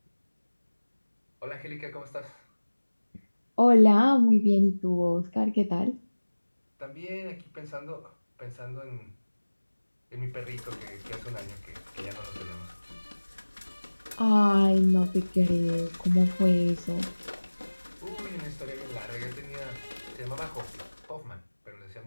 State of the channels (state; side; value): inverted; both; correlation -1.00